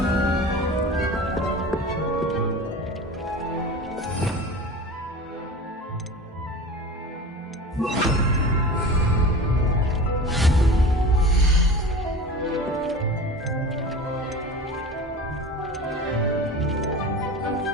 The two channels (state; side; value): normal; both; correlation 0.34